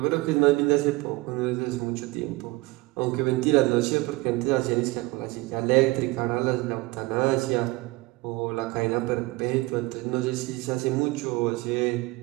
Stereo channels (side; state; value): left; quieter; 22.3 dB